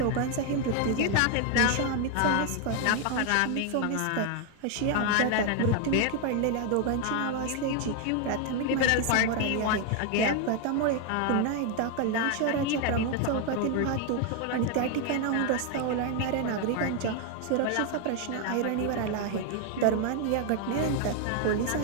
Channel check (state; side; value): different; both; correlation 0.01